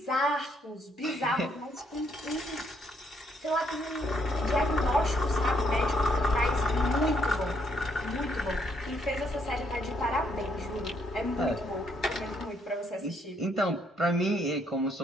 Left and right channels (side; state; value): both; normal; correlation 0.72